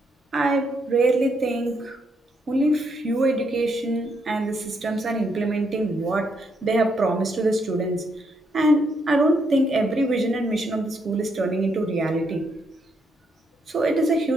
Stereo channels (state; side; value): normal; both; correlation 0.76